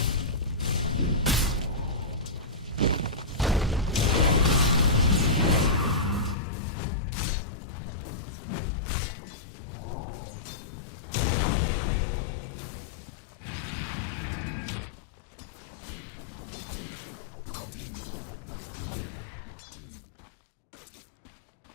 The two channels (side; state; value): right; drops out; at 6.4 s